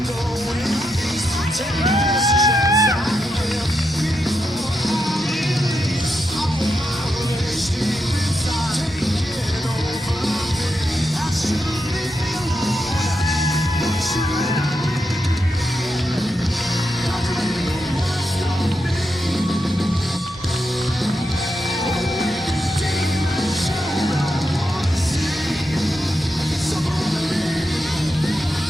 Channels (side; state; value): both; normal; correlation 0.85